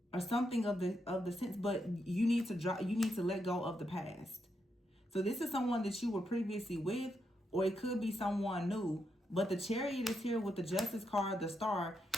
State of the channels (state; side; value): normal; both; correlation 0.82